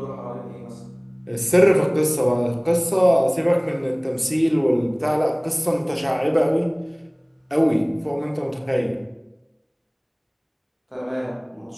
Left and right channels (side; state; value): both; identical; correlation 1.00